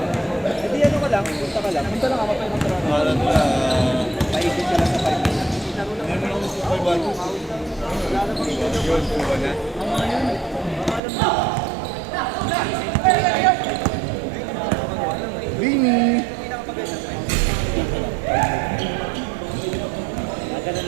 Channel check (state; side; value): drops out; left; at 11.0 s